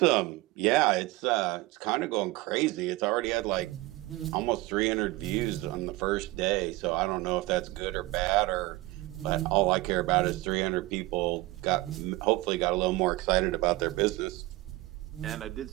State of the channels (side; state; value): left; quieter; 19.8 dB